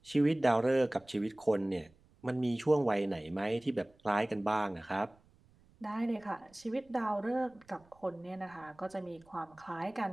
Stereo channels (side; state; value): right; noise; rumble, 30 dB below the sound